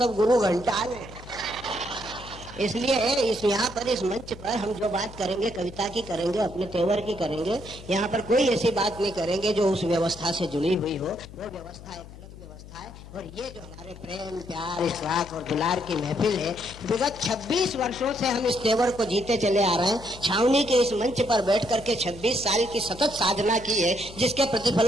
गुरु घंटाल है। इसलिए यहाँ पर इस मंच पर हम जो बात करेंगे कविता की करेंगे, अपने तेवर की करेंगे। यहाँ पर कोई ऐसी बात नहीं करेंगे जो उस व्यवस्था से जुड़ी हुई हो। वो व्यवस्था एक अलग व्यवस्था है। और ये जो हमारे प्रेम प्यार इशराक और दुलार की महफिल है, विगत 26 वर्षों से हम इस तेवर को जीते चले आ रहे हैं। छावनी के इस मंच पर बैठ करके 26 साल की सतत साधना की है, जिसके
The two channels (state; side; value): noise; left; hum, 16 dB below the sound